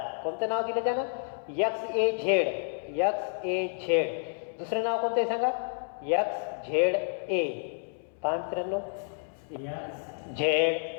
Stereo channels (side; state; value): right; silent; 58 dB below the other